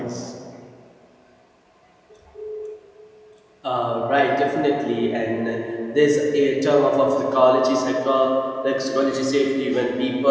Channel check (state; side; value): identical; both; correlation 1.00